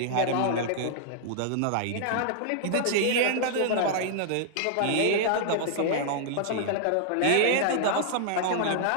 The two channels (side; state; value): both; different; correlation -0.01